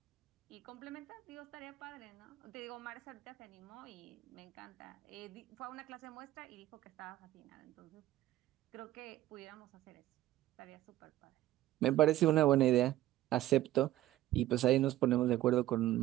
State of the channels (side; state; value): left; quieter; 14.6 dB